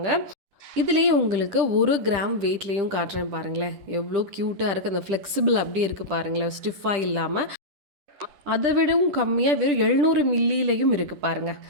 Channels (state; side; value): late; left; 10 ms